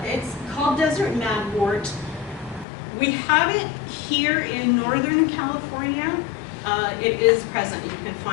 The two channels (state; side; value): drops out; right; at 2.7 s